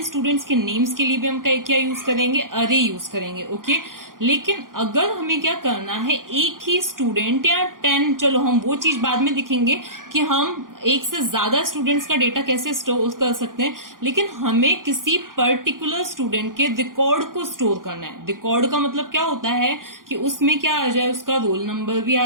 स्टूडेंट्स के नेम्स के लिए भी हम क्या यूज करेंगे, अरे यूज करेंगे। ओके, लेकिन अगर हमें क्या करना है, एक ही स्टूडेंट या 10, चलो हम वो चीज बाद में दिखेंगे कि हम एक से ज्यादा स्टूडेंट्स का डेटा कैसे स्टोर कर सकते हैं, लेकिन हमें किसी पर्टिकुलर स्टूडेंट के रिकॉर्ड को स्टोर करना है। रिकॉर्ड का मतलब क्या होता है कि उसमें क्या आ जाए, उसका रोल नंबर भी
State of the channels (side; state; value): left; late; 0.90 ms